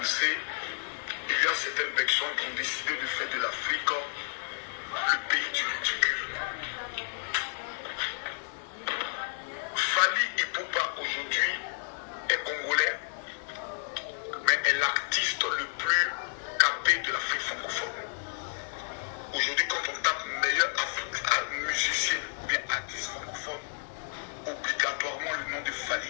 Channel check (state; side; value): silent; right; 57 dB below the other